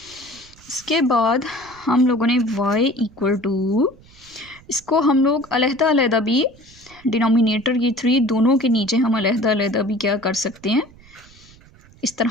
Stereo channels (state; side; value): noise; right; rumble, 25 dB below the sound